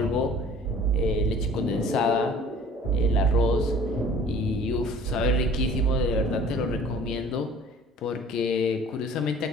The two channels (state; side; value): normal; both; correlation 0.49